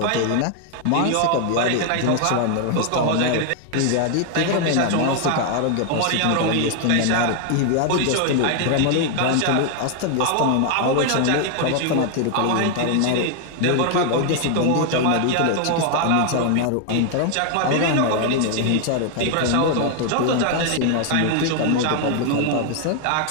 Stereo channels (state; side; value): different; both; correlation 0.00